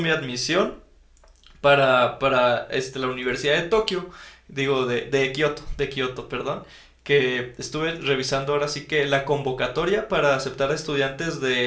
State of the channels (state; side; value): identical; both; correlation 1.00